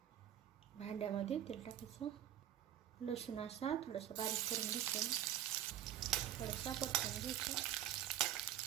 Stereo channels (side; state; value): left; quieter; 11.5 dB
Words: भांड्यामध्ये तेल टाकायचं. लसूण असा थोडासा बारीक करून घ्यायचं. थोडासा परतून घ्यायचं.